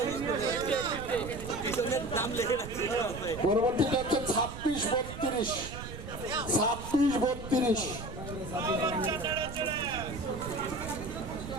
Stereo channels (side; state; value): right; noise; rumble, 10 dB below the sound